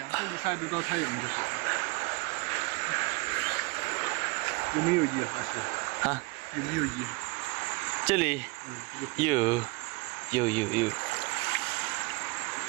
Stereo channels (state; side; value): quieter; left; 26.5 dB